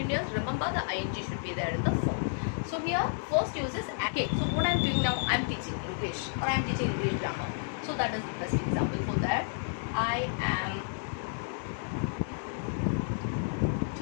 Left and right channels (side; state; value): right; silent; digital silence